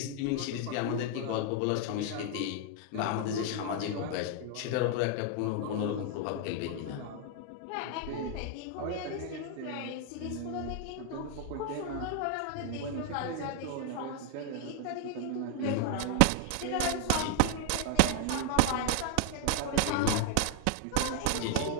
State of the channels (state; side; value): different; both; correlation 0.00